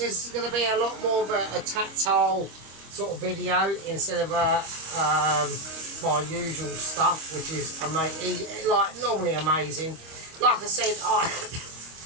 is going to be a lot more of a tactile sort of video instead of my usual stuff, which is like normally amazing. Like I said,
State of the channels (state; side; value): late; left; 25 ms